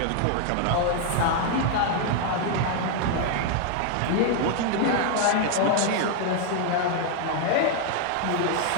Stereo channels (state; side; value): different; both; correlation 0.00